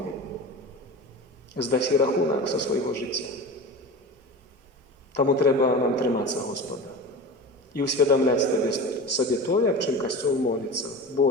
Здаси рахунок за свого життя. Тому треба нам триматися Господа. І усвідомляти собі то, як чим Костюл молиться.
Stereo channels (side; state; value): both; normal; correlation 0.31